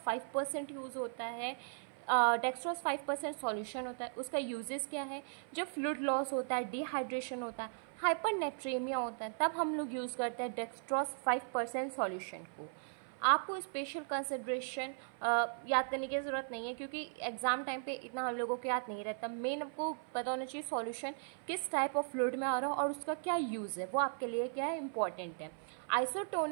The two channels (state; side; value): silent; left; 53 dB below the other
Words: 5% यूज़ होता है। डेक्सट्रोज 5% सॉल्यूशन होता है। उसका यूजेस क्या है? जब फ्लूइड लॉस होता है, डिहाइड्रेशन होता है, हाइपरनेट्रेमिया होता है, तब हम लोग यूज़ करते हैं डेक्सट्रोज 5% सॉल्यूशन को। आपको स्पेशल कंसिड्रेशन याद करने की ज़रूरत नहीं है, क्योंकि एग्ज़ाम टाइम पे इतना हम लोगों को याद नहीं रहता। मेन आपको पता होना चाहिए सॉल्यूशन किस टाइप ऑफ फ्लूइड में आ रहा है और उसका क्या यूज़ है, वो आपके लिए क्या है, इंपॉर्टेंट है।